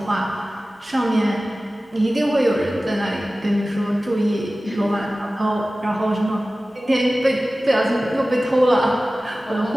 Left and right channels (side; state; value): both; normal; correlation 0.96